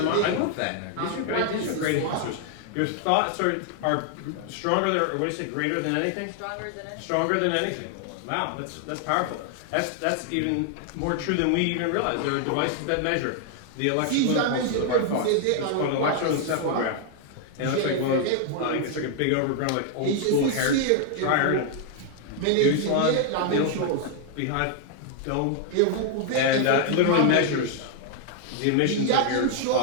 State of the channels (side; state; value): both; different; correlation 0.00